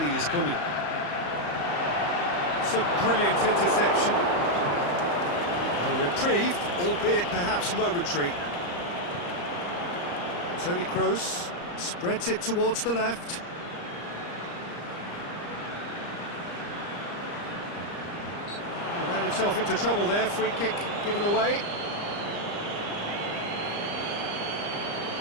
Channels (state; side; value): late; right; 34 ms